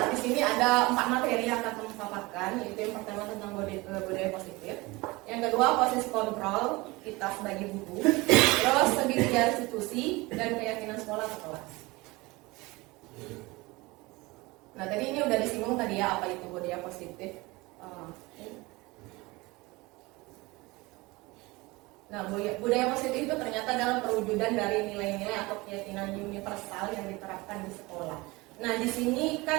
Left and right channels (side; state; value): left; quieter; 22.8 dB